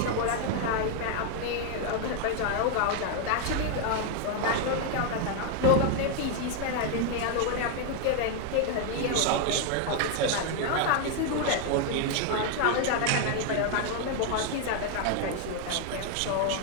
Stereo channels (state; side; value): different; both; correlation 0.00